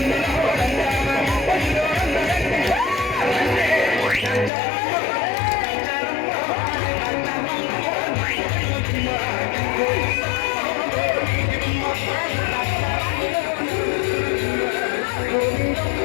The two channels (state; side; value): drops out; right; at 4.5 s